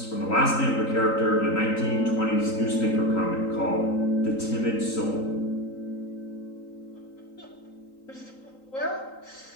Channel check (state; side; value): late; right; 3.9 ms